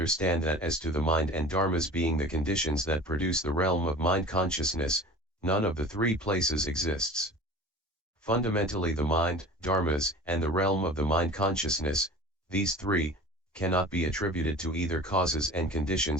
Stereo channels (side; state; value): both; normal; correlation 0.39